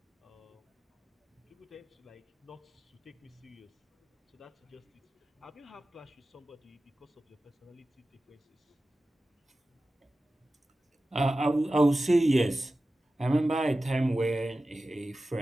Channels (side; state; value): both; normal; correlation 0.95